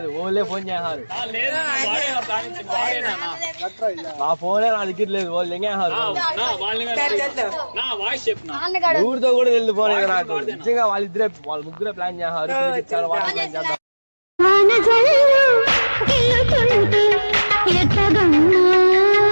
ఓన్లే ఫోన్ చేశారు. నా ఫోనే నా దగ్గర లేదు. వాళ్ళు ఎంగేశారు. ఊరితో కూడా తెలియదు ఫోన్. నాకు నిజంగా వాళ్ళ ముగ్గురే ప్లాన్ చేశారు. ఇచ్చారు వాటర్ ప్లాన్ చేద్దాం.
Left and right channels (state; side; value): inverted; both; correlation -1.00